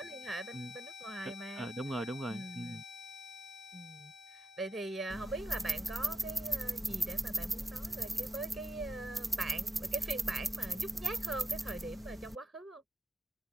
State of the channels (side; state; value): both; normal; correlation 0.84